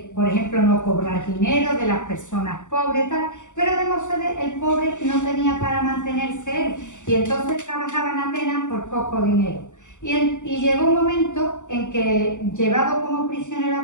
por ejemplo, no cobrar dinero de las personas pobres, tal. Pero Demócedes, el pobre, no tenía para mantenerse él y entonces trabajaba en Atenas por poco dinero. Y llegó un momento en que, llevado como prisionero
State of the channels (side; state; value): right; late; 0.85 ms